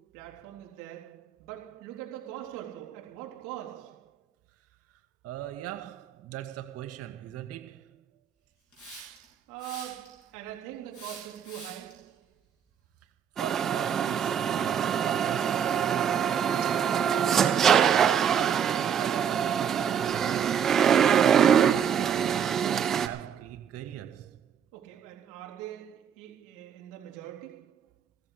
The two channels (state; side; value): quieter; left; 8.2 dB